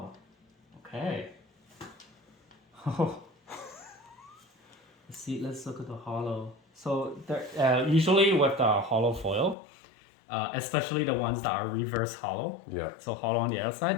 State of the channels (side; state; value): right; drops out; at 9.6 s